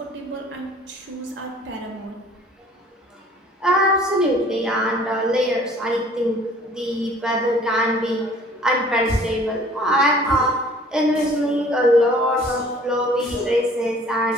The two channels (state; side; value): normal; both; correlation 0.52